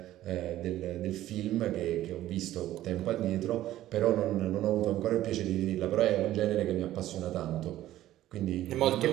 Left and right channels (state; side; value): quieter; left; 13.9 dB